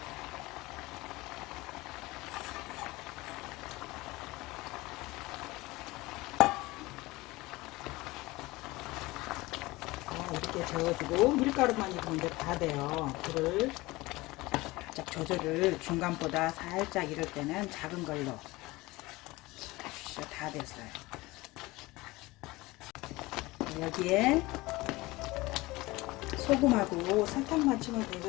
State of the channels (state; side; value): quieter; right; 20.8 dB